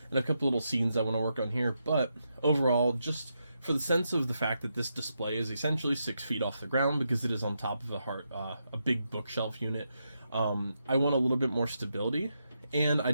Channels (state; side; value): inverted; both; correlation -0.83